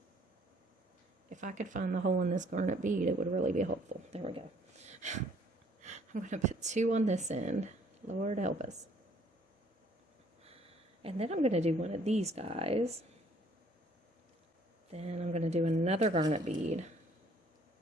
If I could find the hole in this garnet bead, it would really be helpful. There we go. I'm going to put 2 on this end. Lord help us. And then I'm going to do one of these guys. Then I'm going to do another garnet bead.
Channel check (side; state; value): both; normal; correlation 0.61